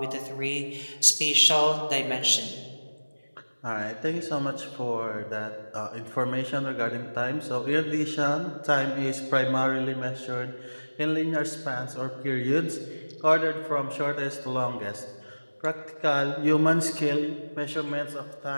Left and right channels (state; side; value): inverted; both; correlation -1.00